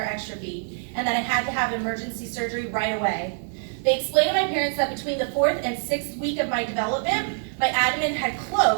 exstrophy, and that I had to have emergency surgery right away. They explained to my parents that between the 4th and 6th week of my development, my abdomen had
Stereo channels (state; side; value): silent; left; 62 dB below the other